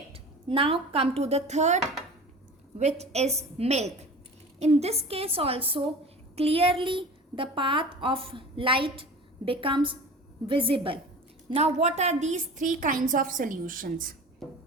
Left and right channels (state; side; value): normal; both; correlation 0.38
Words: Now come to the third, which is milk. In this case also clearly the path of light becomes visible. Now what are these three kinds of solutions?